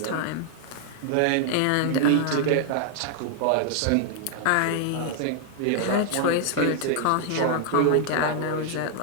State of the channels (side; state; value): both; different; correlation 0.00